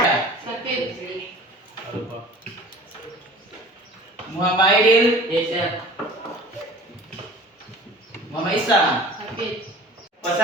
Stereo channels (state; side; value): normal; both; correlation 0.43